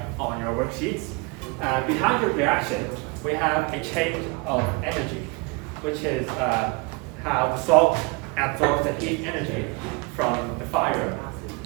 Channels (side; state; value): left; quieter; 28.8 dB